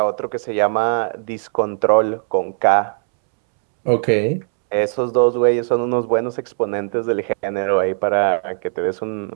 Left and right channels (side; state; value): left; silent; 67 dB below the other